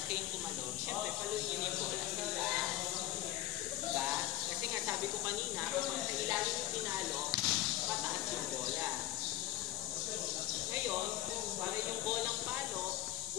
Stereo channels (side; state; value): right; quieter; 14.9 dB